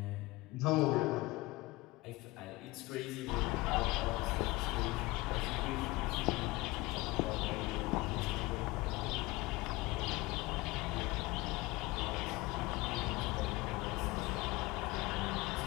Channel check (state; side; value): quieter; right; 21.2 dB